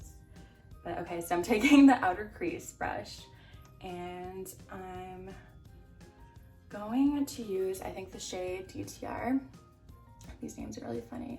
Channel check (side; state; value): both; identical; correlation 1.00